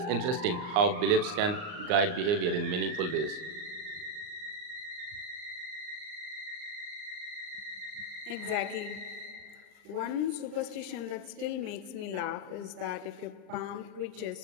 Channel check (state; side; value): late; left; 39 ms